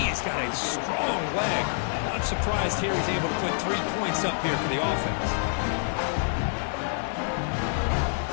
has got a strong leg. Not surprised here he's able to put 3 points up here for the offense.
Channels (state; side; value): silent; right; digital silence